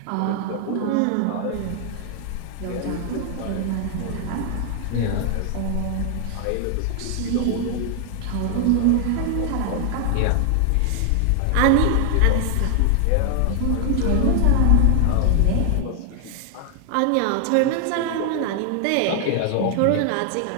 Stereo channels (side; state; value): both; different; correlation 0.00